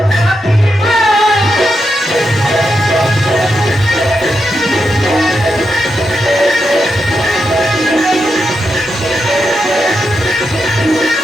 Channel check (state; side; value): normal; both; correlation 0.85